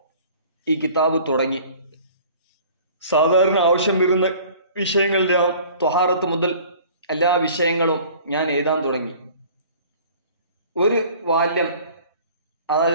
ഈ കിതാബ് തുടങ്ങി. സാധാരണ ആവശ്യം വരുന്ന വിഷയങ്ങളുടെ ത്വഹാറത്ത് മുതൽ എല്ലാ വിഷയങ്ങളും ഞാൻ എഴുതാൻ തുടങ്ങി. ഒരു വാല്യം,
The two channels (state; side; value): inverted; both; correlation -0.48